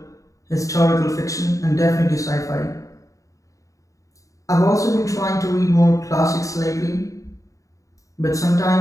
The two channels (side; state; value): right; late; 0.16 ms